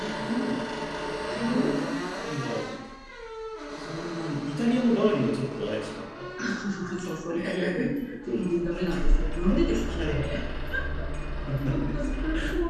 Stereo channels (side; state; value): both; identical; correlation 1.00